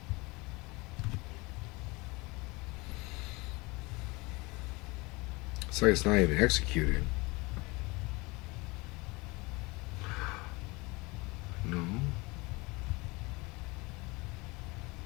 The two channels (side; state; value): right; quieter; 24.9 dB